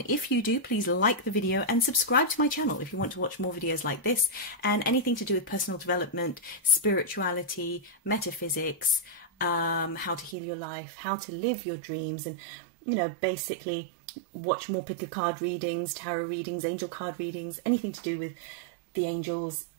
if you do, please like the video and subscribe to my channel if you want to watch more videos like this and anything to do with personal development, spirituality, metaphysics, how to heal your life, how to live your dreams, and, you know, basically watch more pick a card readings, tarot readings, angel card readings, anything to do with the angels,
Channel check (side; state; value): left; drops out; at 10.4 s